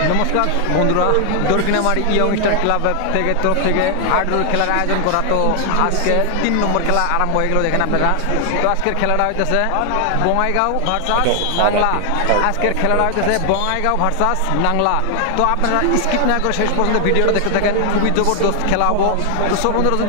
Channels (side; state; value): both; different; correlation 0.00